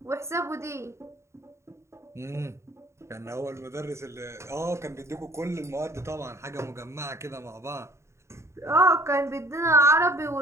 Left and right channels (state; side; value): late; left; 0.14 ms